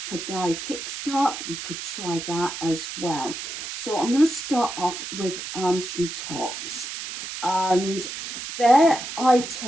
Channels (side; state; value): right; noise; hiss, 7 dB below the sound